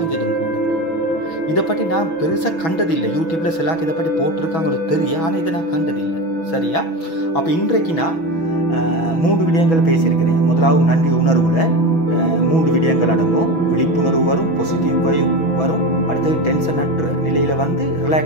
கூட. இதை பற்றி நான் பெருசாக கண்டதில்லை. யூடியூப்பில் சிலாக்கு இதை பற்றி போட்டிருக்காங்களோ தெரியும், ஆனால் இதை நான் கண்டதில்லை. சரியா? அப்போ இன்றைக்கு நான் 3 விடயங்கள் பேசியிருக்கிறேன். முதலாவது நன்றி உணர்வில், 3 விடயங்கள் அடங்கும். விழிப்புணர்வு வரும், பாசிட்டிவ் வைப் வரும், அடுத்தது டென்ஷன் அற்ற நிலையில் வந்து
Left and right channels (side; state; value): right; late; 6.1 ms